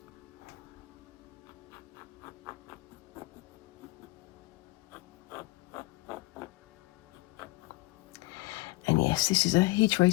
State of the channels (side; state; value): right; quieter; 21.4 dB